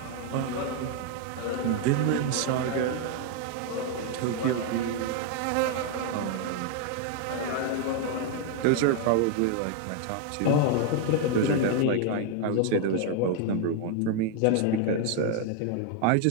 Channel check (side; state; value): both; different; correlation 0.00